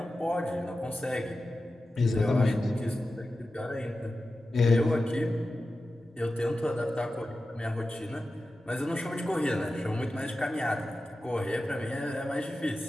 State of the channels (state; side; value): normal; both; correlation 0.93